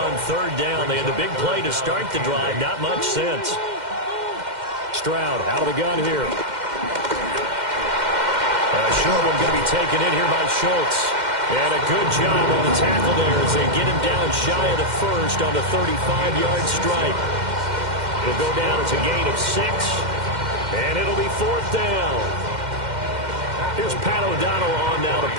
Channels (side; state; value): left; late; 2.1 ms